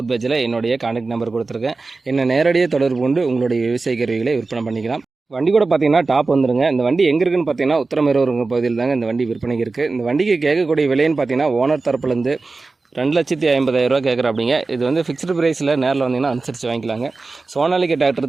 பேஜில் என்னுடைய கான்டாக்ட் நம்பர் கொடுத்துருக்கேன். என்ன நேரடியாக தொடர்பு கொண்டு உங்களுடைய விவசாய கருவிகளை விற்பனை பண்ணிக்கலாம். வண்டி கூட பார்த்தீங்கன்னா டாப் வந்துருங்க. இந்த வண்டி எங்கே இருக்குன்னு பார்த்தீங்கன்னா உத்தரமேரூருங்க பகுதியில் தாங்க இந்த வண்டி விற்பனைக்கு இருக்குது. இந்த வண்டிக்கு கேட்கக்கூடிய விலைன்னு பார்த்தீங்கன்னா ஓனர் தரப்புலேருந்து 2,50,000 கேட்குறாப்பிங்க. இது வந்து ஃபிக்ஸ்டு ப்ரைஸில் நேரில் வந்தீங்கன்னா அனுசரித்து வாங்கிக்கலாங்க. சோனாலிகா டிராக்டர்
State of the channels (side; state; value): left; quieter; 3.7 dB